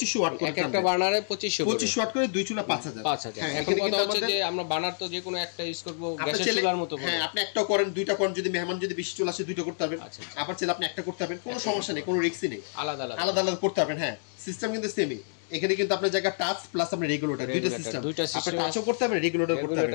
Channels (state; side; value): silent; right; digital silence